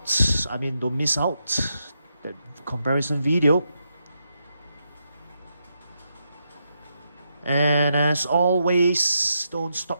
I mean, don't miss out that comparison video. And as always, don't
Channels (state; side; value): inverted; both; correlation -0.83